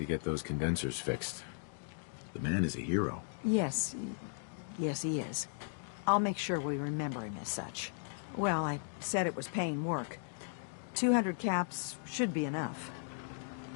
get those condensers fixed. The man is a hero. Yes. Yes, he is. I'll make sure we remember him as such. Well, I said it was paying work. 200 caps should be enough.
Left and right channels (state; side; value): silent; right; digital silence